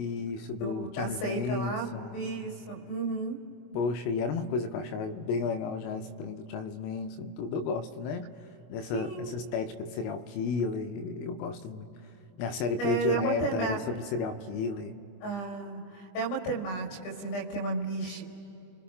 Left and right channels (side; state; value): right; late; 25 ms